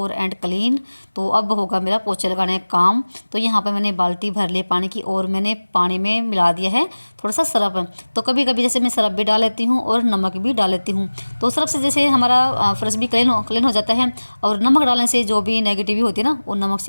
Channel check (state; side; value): inverted; both; correlation -1.00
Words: एंड क्लीन। तो अब होगा मेरा पोछे लगाने का काम। तो यहाँ पर मैंने बाल्टी भर ली पानी की और मैंने पानी में मिला दिया है थोड़ा सा सरफ। तो कभी कभी जैसे मैं सरफ भी डाल लेती हूँ और नमक भी डाल लेती हूँ, तो सरफ से जैसे हमारा फर्श भी क्लीन हो जाता है। और नमक डालने से जो भी नेगेटिव होती है ना वो नमक